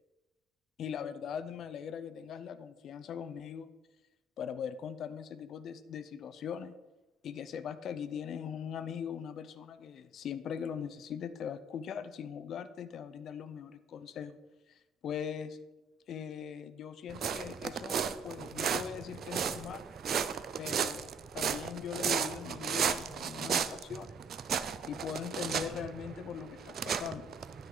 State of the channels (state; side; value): normal; both; correlation 0.58